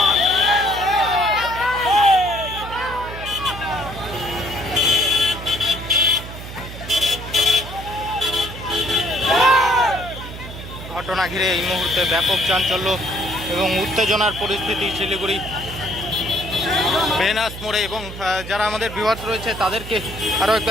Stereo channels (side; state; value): right; noise; hum, 11 dB below the sound